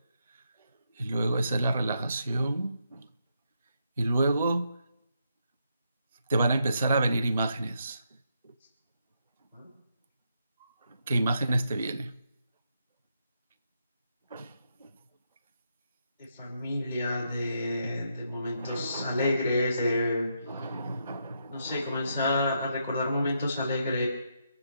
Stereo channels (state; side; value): inverted; both; correlation -0.79